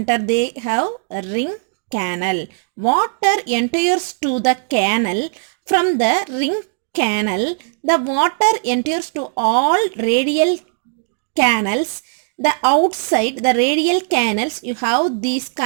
they have a ring canal. Water enters to the canal. From the ring canal, the water enters to all radial canals. The outside the radial canals, you have these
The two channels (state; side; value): silent; left; 67 dB below the other